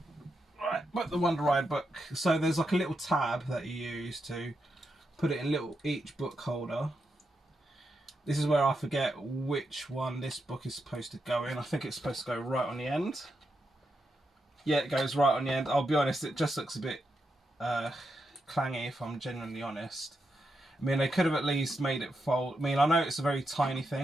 Right, put the Wonder Ride book. So there's like a little tab that you use to put it in each book holder. This is where I forget which one this book is supposed to go in. I think it's supposed to go right on the end. Yeah, it goes right on the end. I'll be honest, it just looks a bit clangy if I'm genuinely honest. They could have at least made it fold. I know it's a very tiny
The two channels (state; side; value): normal; both; correlation 0.85